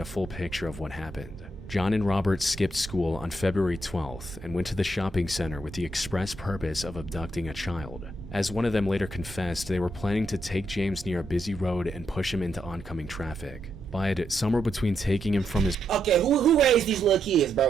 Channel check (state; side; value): normal; both; correlation 0.80